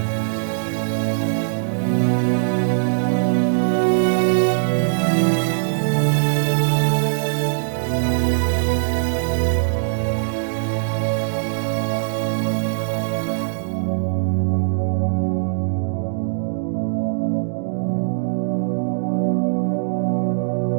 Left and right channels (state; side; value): silent; left; digital silence